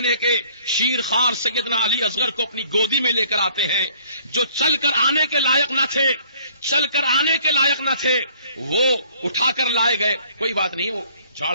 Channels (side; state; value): both; inverted; correlation -0.58